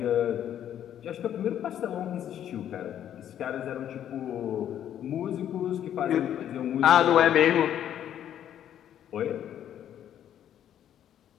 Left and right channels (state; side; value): quieter; right; 10.4 dB